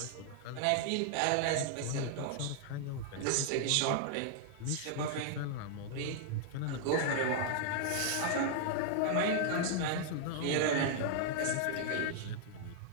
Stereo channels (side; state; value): both; different; correlation 0.00